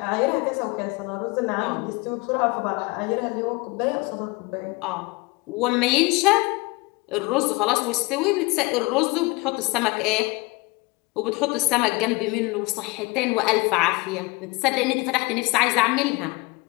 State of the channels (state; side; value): quieter; right; 25.3 dB